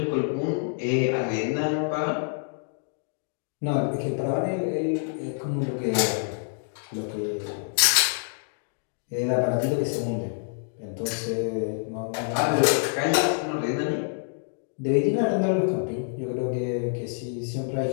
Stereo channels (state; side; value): silent; right; digital silence